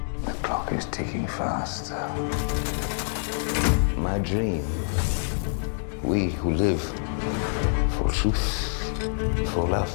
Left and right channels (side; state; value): right; silent; digital silence